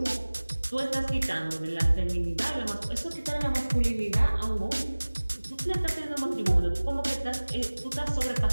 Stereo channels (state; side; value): inverted; both; correlation -1.00